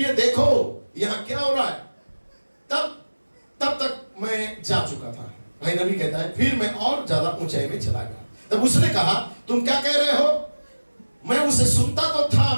देखो यहाँ क्या हो रहा है। तब तक मैं जा चुका था। भाई नबी कहता है, फिर मैं और ज्यादा ऊंचाई में चला गया। तब उसने कहा, तुम क्या कह रहे हो? मैं उसे सुनता तो था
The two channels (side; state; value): both; inverted; correlation -1.00